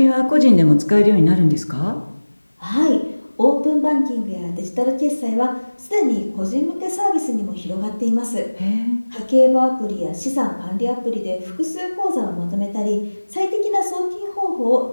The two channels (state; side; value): inverted; both; correlation -1.00